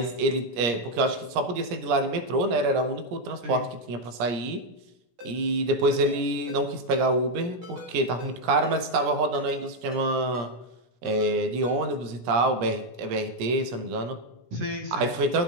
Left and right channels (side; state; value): left; late; 17 ms